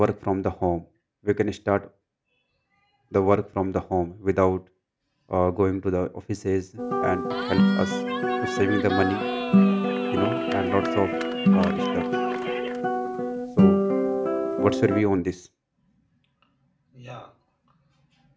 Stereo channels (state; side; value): identical; both; correlation 1.00